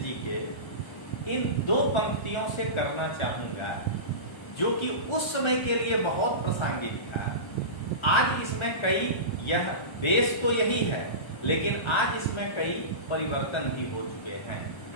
के इन 2 पंक्तियों से करना चाहूंगा, जो कि उस समय के लिए बहुत प्रासंगिक था। आज इसमें कई, यह देश तो यही है लेकिन आज इसमें कई परिवर्तन भी हो चुके हैं।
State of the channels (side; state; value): right; late; 1.3 ms